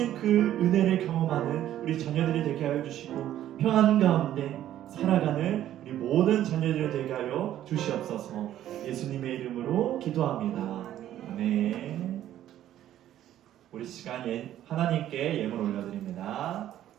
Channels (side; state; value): left; quieter; 12.2 dB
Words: 그 은혜를 경험하는 우리 자녀들이 되게 하여 주시고 평안 가운데 살아가는 우리 모든 자녀들이 되게 하여 주시옵소서. 예수님의 이름으로 기도합니다. 아멘. 우리 시간 하나님께 예물 올려드립니다.